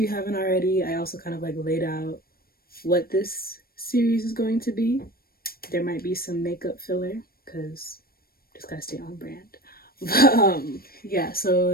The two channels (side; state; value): right; late; 0.44 ms